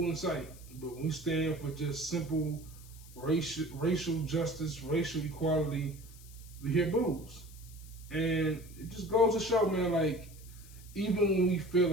in sight. But when we stand for just simple racial justice, racial equality, we hear boos. And it just goes to show, man, like, even when we feel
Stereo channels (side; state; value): left; noise; hiss, 21 dB below the sound